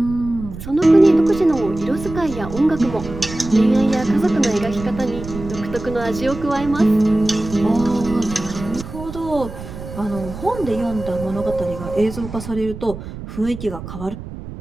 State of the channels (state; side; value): noise; right; rumble, 11 dB below the sound